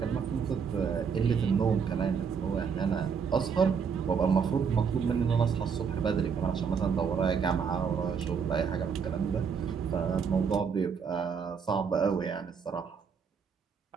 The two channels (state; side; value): quieter; left; 6.4 dB